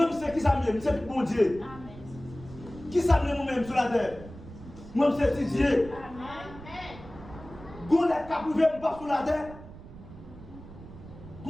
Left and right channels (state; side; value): noise; right; rumble, 16 dB below the sound